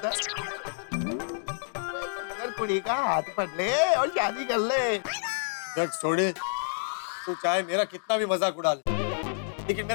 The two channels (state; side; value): silent; right; digital silence